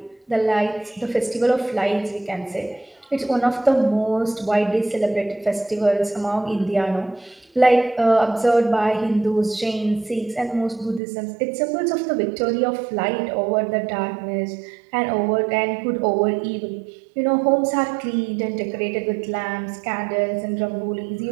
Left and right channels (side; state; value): left; drops out; at 11.0 s